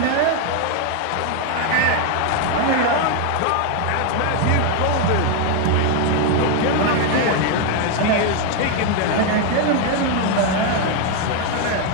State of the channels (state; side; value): different; both; correlation 0.01